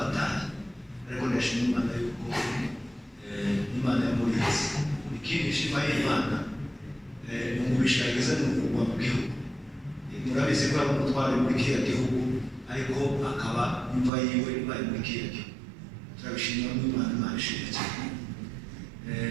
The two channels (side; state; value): left; drops out; at 14.1 s